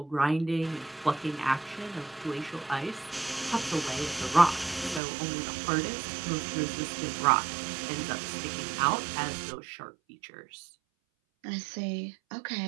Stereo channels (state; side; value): drops out; left; at 5.0 s